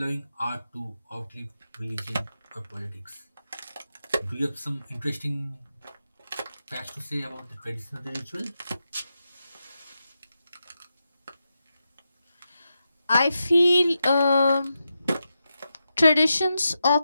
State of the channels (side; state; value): both; inverted; correlation -0.88